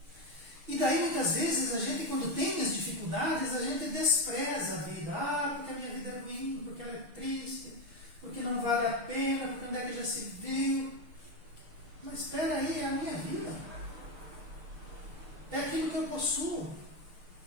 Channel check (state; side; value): late; left; 6.6 ms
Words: E daí, muitas vezes, a gente, quando tem as dificuldades, a gente despreza a vida. Ah, porque a minha vida é ruim, porque ela é triste, porque não vale a pena, porque onde é que já se viu. Mas espera aí, é a minha vida. É aquilo que eu possuo.